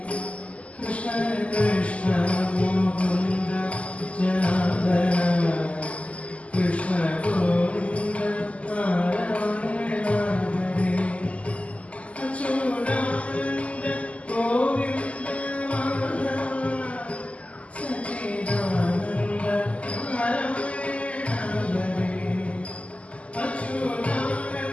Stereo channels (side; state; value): right; late; 0.064 ms